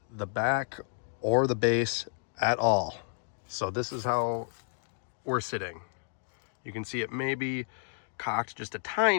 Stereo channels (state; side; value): silent; right; digital silence